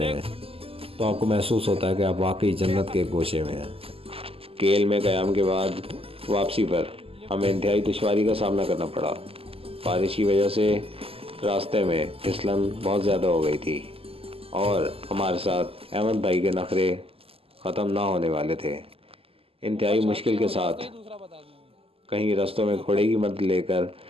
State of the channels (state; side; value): late; left; 0.28 ms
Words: हैं, तो तो आपको महसूस होता है कि आप वाकई जन्नत के गोशे में हैं। केल में क़याम के बाद वापसी पर हमें इंतहाई दुश्वारी का सामना करना पड़ा। बारिश की वजह से रास्ते में फिसलन बहुत ज़्यादा हो गई थी और हमारे साथ अहमद भाई के नखरे ख़त्म ना होने वाले थे। इंतहाई मुश्किल के साथ कहीं रास्तों में घोड़े की मदद लेकर